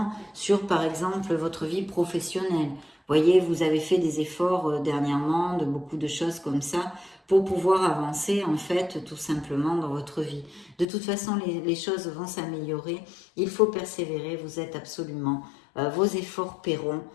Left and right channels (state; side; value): drops out; right; at 10.9 s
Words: sur par exemple votre vie professionnelle. Vous voyez, vous avez fait des efforts dernièrement, de beaucoup de choses comme ça, pour pouvoir avancer en fait tout simplement dans votre vie. De toute façon, les choses vont s'améliorer. Il faut persévérer, vous êtes absolument, vos efforts paieront.